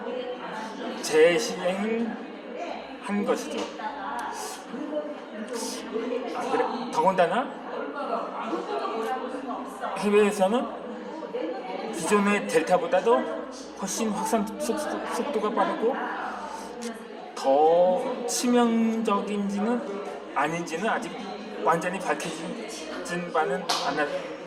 재시행을 한 것이죠. 그래, 더군다나 해외에서는 기존의 델타보다도 훨씬 확산 속도가 빠르고 더 치명적인지는 아닌지는 아직 완전히 밝혀진 바는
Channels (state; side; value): identical; both; correlation 1.00